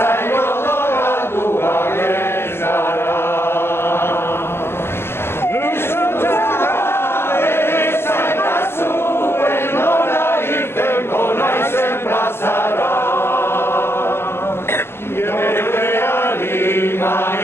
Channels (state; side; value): late; right; 0.12 ms